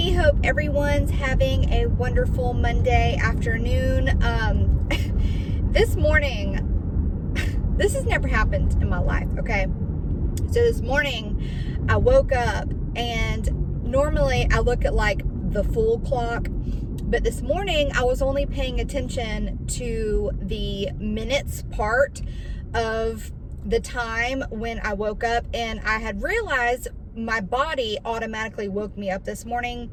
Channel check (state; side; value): identical; both; correlation 1.00